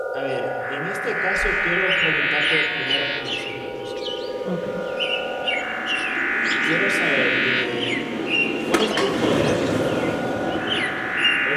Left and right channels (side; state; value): both; identical; correlation 1.00